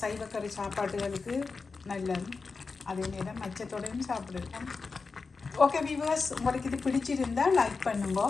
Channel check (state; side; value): quieter; right; 4.5 dB